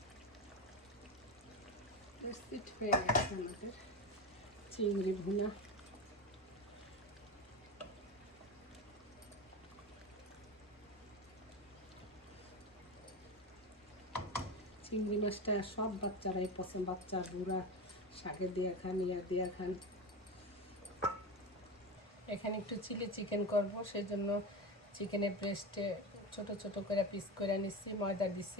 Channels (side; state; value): both; normal; correlation 0.21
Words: প্রস্তুত হয়ে গেছে আমাদের চিংড়ি ভুনা। চিংড়ি মাছটা সব বাচ্চারাই পছন্দ। বাচ্চা বুড়া শাকে দিয়ে খান, ইয়া দিয়ে খান। এখানে একটু চিলি চিকেন করব, সেই জন্য চিকেনের ব্রেস্টে ছোট ছোট করে পিস করে নিচ্ছি। ময়দা দিচ্ছি,